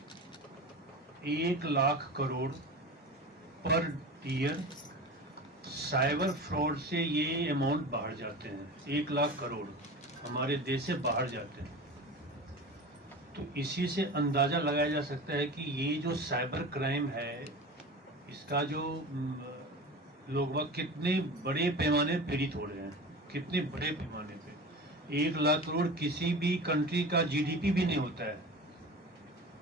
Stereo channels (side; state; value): both; normal; correlation 0.33